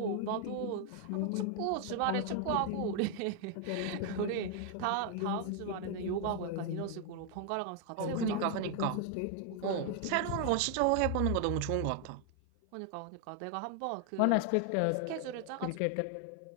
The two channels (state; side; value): different; both; correlation 0.00